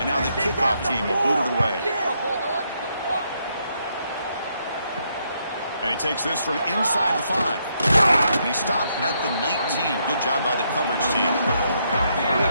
now the kickoff team will boot it away. And he takes this from inside the 5. And he stopped at the 19. Good job by the coverage team.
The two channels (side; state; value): both; inverted; correlation -0.76